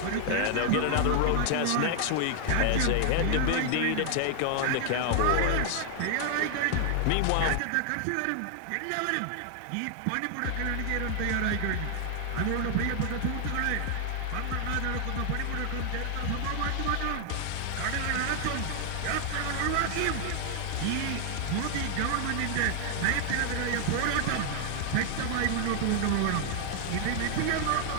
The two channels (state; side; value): different; both; correlation 0.00